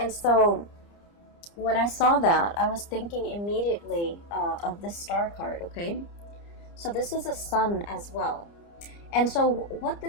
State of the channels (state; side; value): late; right; 29 ms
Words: so when I saw that, I was thinking immediately of this star card, okay? So this is a sun as well. And so what